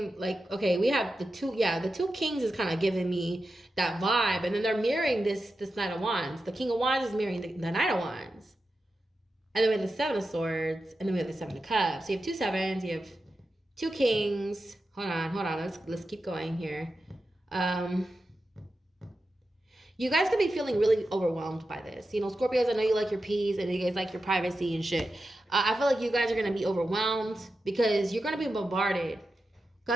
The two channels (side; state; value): both; normal; correlation 0.91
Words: like, okay, we have the 2 kings is kind of giving me that vibe. And then they're mirroring this Knight of Wands. The King of Wands is mirroring the Knight of Wands. And then we have the 7 of Swords. And then we have the 7 of Cups. So you have 2 sevens. You have 2 kings. Hold on. Let's keep going here. You guys could be feeling really overwhelmed by this. You know, Scorpios, I know you like your peace and you guys like your privacy and shit. I feel like you guys are going to be overwhelmed because you're going to be bombarded.